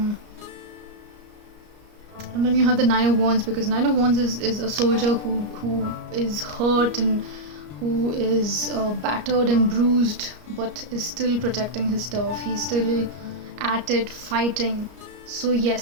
then you have the 9 of Wands, because 9 of Wands is a soldier who is hurt and who is battered and bruised, but is still protecting his stuff. He's still at it, fighting. So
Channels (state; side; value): late; left; 34 ms